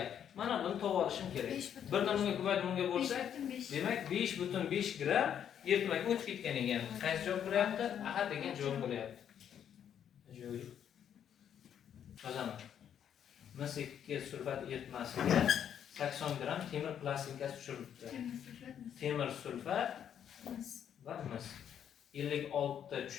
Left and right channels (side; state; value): right; quieter; 9.1 dB